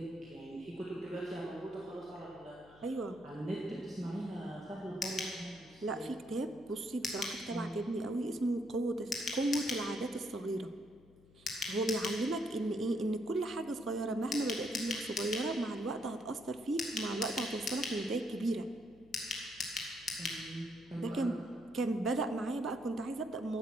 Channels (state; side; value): noise; left; hum, 25 dB below the sound